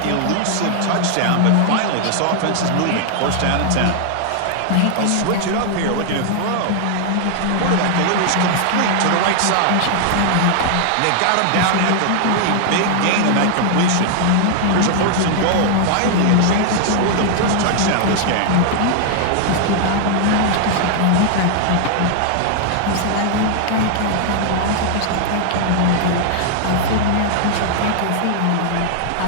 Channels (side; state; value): both; different; correlation 0.00